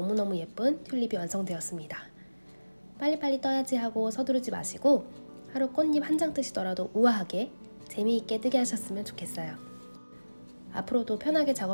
예쁜 튤립이 완성되었습니다. 빨리빨리 떠야지 하고 서두르지 마시고 하루 꽃잎 한 장 뜨시더라도 우아하게 재미있게 뜨게 하셨으면 좋겠어요. 앞으로도 편하게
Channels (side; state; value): both; inverted; correlation -1.00